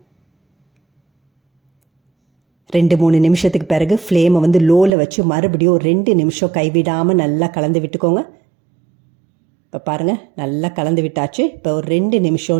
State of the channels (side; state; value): left; drops out; at 4.9 s